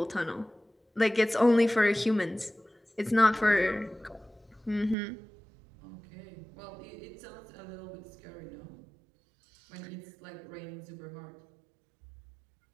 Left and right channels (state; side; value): drops out; left; at 5.0 s